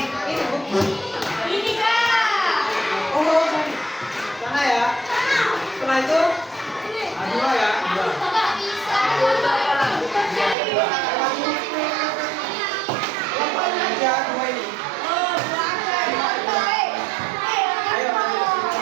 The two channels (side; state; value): left; drops out; at 10.6 s